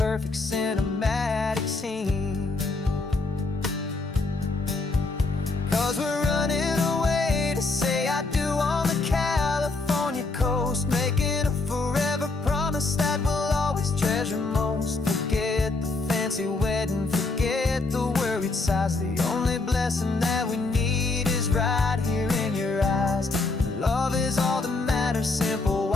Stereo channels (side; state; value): right; quieter; 3.6 dB